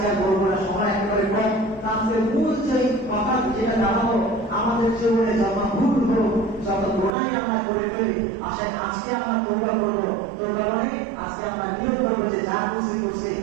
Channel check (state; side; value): drops out; left; at 7.1 s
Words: আর বলবো না, সময় একেবারে কম। তাহলে মূল যে কথা যেটা জানাবো আমাদের জীবনে যত ভুল হোক যত গোনাই আমরা করে ফেলি আসেন আজকে আমরা তওবা করবো। তওবা মানে আজকে আমরা নিয়ত করবো যে যা করছি